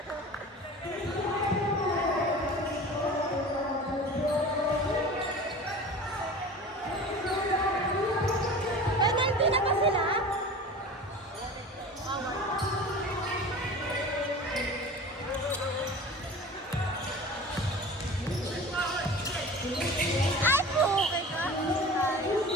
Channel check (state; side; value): normal; both; correlation 0.37